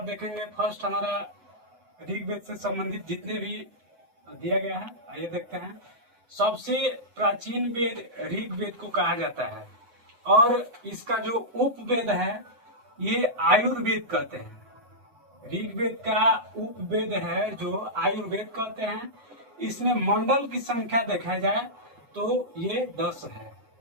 देखेंगे फर्स्ट हमारा ऋग्वेद से संबंधित जितने भी दिया गया है, आइए देखते हैं। सबसे प्राचीन वेद ऋग्वेद को कहा जाता है, और इसका जो उपवेद है ये आयुर्वेद कहते हैं। ऋग्वेद का उपवेद है जो आयुर्वेद कहते हैं। इसमें मंडल की संख्या देखा जाए तो ये 10 है,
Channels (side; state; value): left; late; 8.2 ms